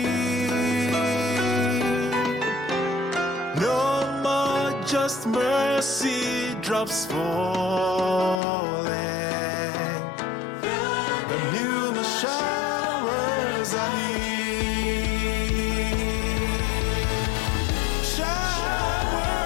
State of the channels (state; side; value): drops out; right; at 8.4 s